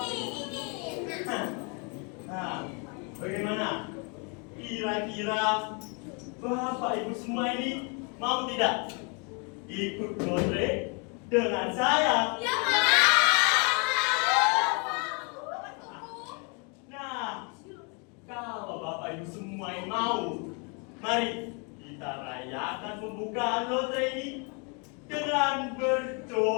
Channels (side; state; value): right; quieter; 34.6 dB